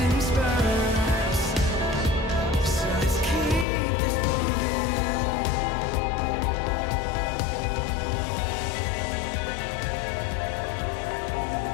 in spurts, so let's keep this moving.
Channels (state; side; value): drops out; right; at 3.7 s